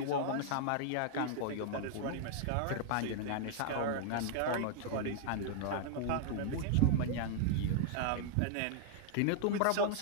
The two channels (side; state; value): both; different; correlation 0.00